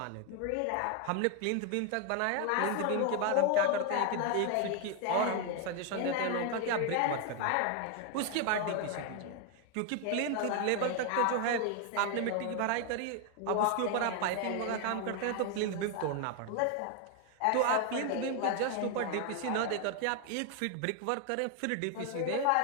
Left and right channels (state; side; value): different; both; correlation 0.01